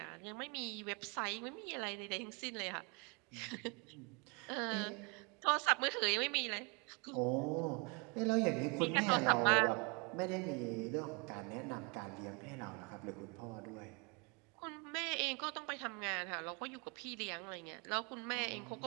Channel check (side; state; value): left; quieter; 31.5 dB